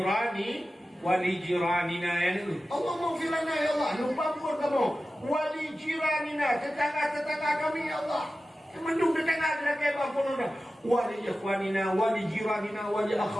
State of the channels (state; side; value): normal; both; correlation 0.94